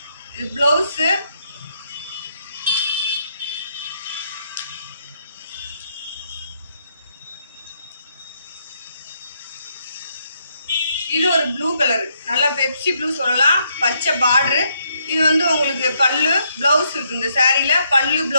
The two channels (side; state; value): both; inverted; correlation -0.75